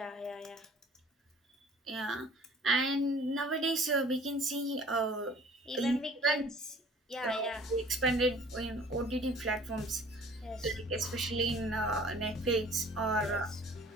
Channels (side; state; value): both; normal; correlation 0.51